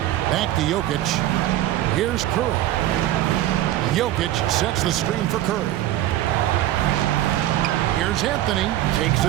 Back to Jokic. Here's Curry. Jokic sets the screen for Curry. Here's Anthony. Takes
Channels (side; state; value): left; quieter; 13.8 dB